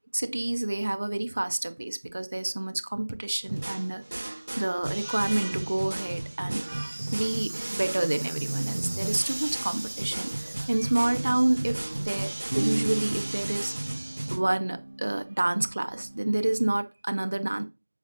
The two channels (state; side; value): inverted; both; correlation -1.00